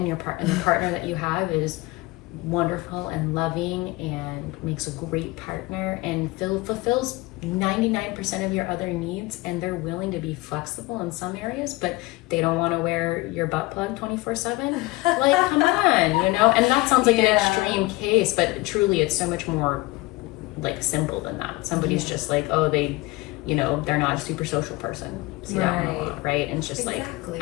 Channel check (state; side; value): quieter; right; 21.6 dB